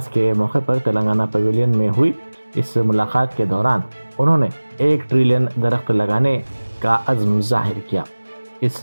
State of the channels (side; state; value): both; inverted; correlation -1.00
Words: के मौके पर तेलंगाना पवेलियन में हुई। इस मुलाकात के दौरान उन्होंने 1 ट्रिलियन दरख्त लगाने का अज़्म जाहिर किया।